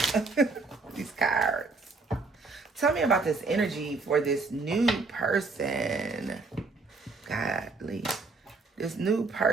these cards. Tell me about this energy for this new person. Godly. This new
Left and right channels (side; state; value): left; quieter; 3.9 dB